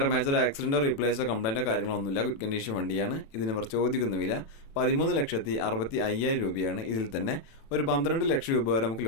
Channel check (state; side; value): late; right; 36 ms